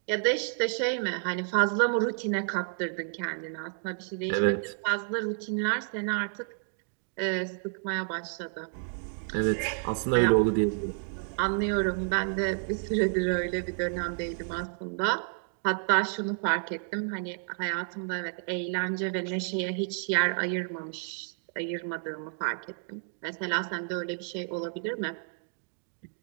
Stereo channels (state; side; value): silent; left; 58 dB below the other